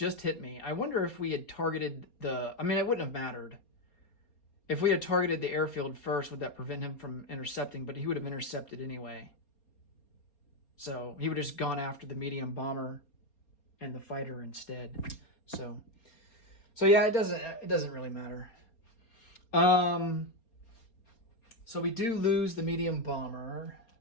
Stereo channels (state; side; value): late; right; 4.3 ms